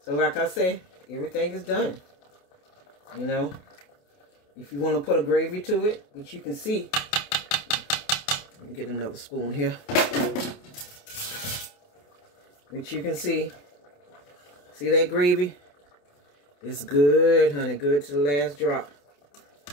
like I say, everything is done. You know, if you want to put a gravy to it, which you can see. Let me get another spoon here. Which you can see. See that gravy? It's good, honey. Good to the last drop.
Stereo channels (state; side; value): late; right; 28 ms